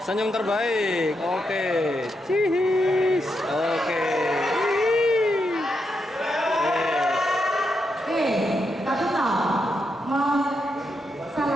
Senyum terbaik. Oke. Cihis. Oke. Tapi tahu mau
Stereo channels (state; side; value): normal; both; correlation 0.83